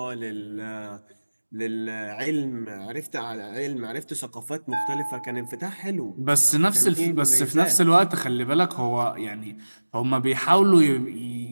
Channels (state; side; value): inverted; both; correlation -1.00